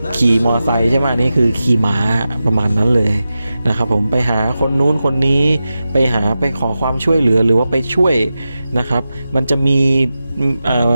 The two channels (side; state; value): both; inverted; correlation -0.92